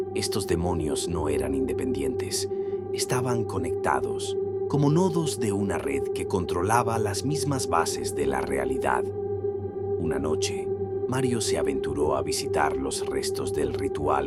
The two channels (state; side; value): identical; both; correlation 1.00